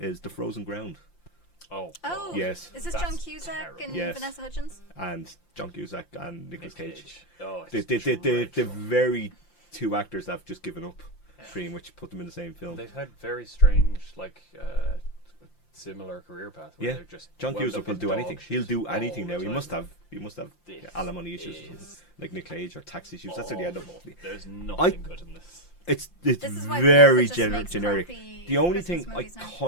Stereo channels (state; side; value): late; right; 5.8 ms